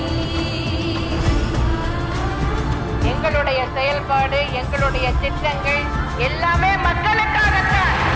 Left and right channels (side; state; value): both; identical; correlation 1.00